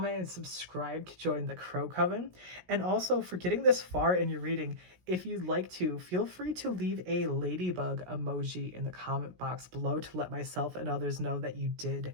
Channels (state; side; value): late; left; 17 ms